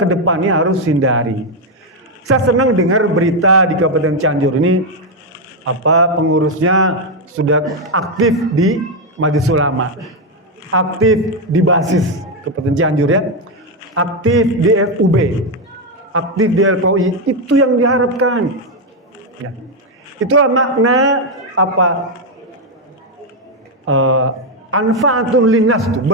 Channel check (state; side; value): normal; both; correlation 0.04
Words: depannya harus hindari. Saya senang dengar berita di Kabupaten Cianjur ini, pengurusnya sudah aktif di Majelis Ulama, aktif di basis Kabupaten Cianjur, ya, aktif di FUB, aktif di LPOI. Itu yang diharapkan, ya. Itulah makna anfaatun linnas tuh,